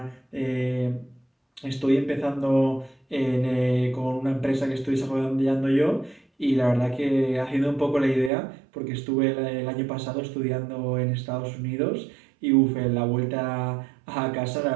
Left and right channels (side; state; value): left; drops out; at 8.3 s